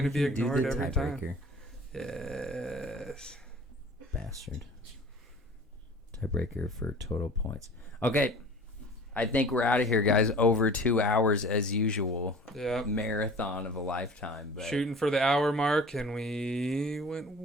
we be can do ignored the every time. tiebreaker. Yes. Bastard. Tiebreaker for total points. Okay. I think we're out of here, guys. Over 2 hours as usual. Yeah. Marathon of a lifetime. But Shooting for the hour mark, and we went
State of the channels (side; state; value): both; normal; correlation 0.44